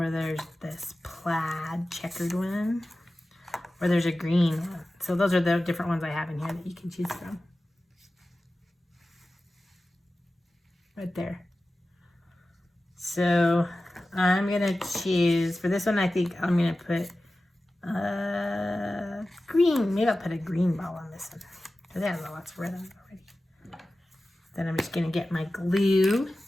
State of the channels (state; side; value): normal; both; correlation 0.95